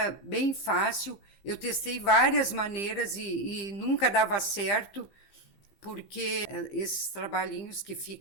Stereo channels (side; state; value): right; late; 15 ms